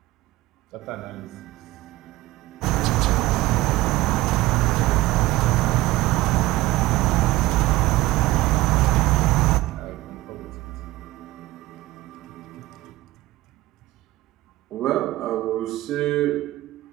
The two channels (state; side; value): quieter; left; 17.9 dB